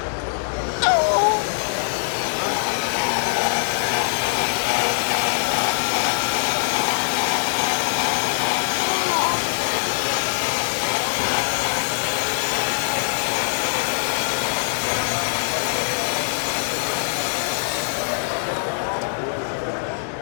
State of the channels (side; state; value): right; silent; digital silence